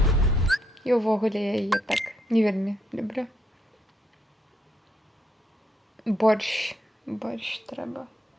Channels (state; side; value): normal; both; correlation 0.76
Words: І ўвогуле я яе так не вельмі люблю. Борщ трэба.